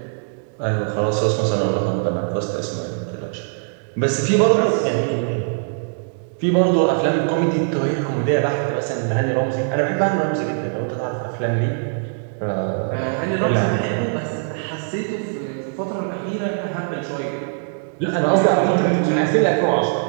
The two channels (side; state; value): left; silent; digital silence